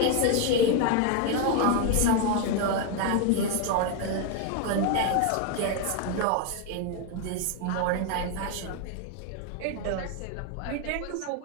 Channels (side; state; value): both; different; correlation 0.01